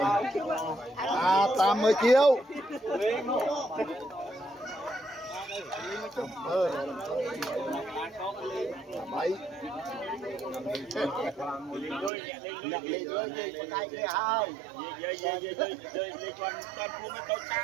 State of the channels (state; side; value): drops out; left; at 12.1 s